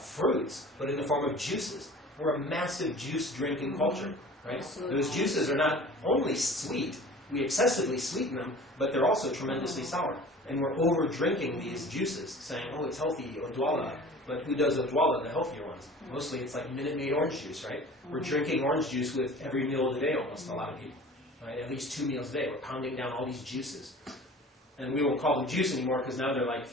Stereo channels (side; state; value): both; normal; correlation 0.43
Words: but in the form of juices. We're a massive juice drinking culture, right? Those juices are not only sweet, we excessively sweeten them, but they're also tremendously sour. And we're over drinking these juices, saying, oh, it's healthy, odwalla. But who does odwalla, the healthier ones? Mostly it's like Minute Maid orange juice, right? We're drinking orange juice with every meal of the day almost, a lot of people. Right? At least 2 meals a day. We're pounding down all these juices. And we won't call them juice anymore because now they're like